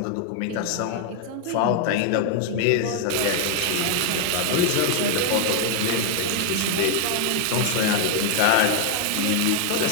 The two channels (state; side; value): different; both; correlation 0.00